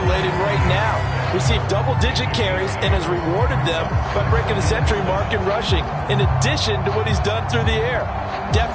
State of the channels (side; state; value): both; identical; correlation 1.00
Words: right now. Received double-digit carries and has rewarded them by breaking the century mark in rushing, in addition to what he's done through the air.